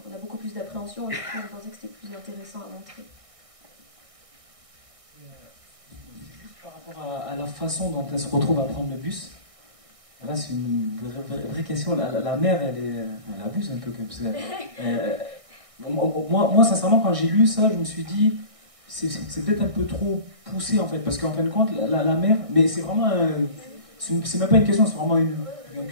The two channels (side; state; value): left; late; 1.6 ms